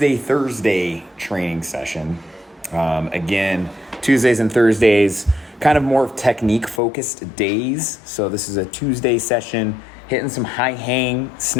training session. Again, Tuesdays and Thursdays, kind of more technique-focused days. So this is a Tuesday session, hitting some high-hang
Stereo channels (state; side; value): drops out; right; at 6.8 s